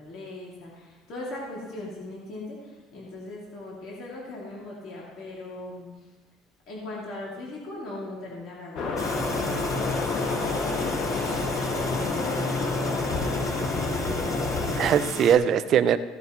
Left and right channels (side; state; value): both; normal; correlation 0.57